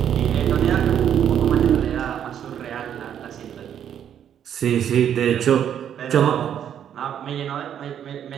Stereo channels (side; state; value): left; quieter; 9.4 dB